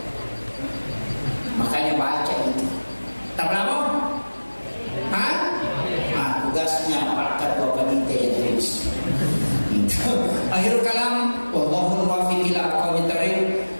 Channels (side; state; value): both; inverted; correlation -1.00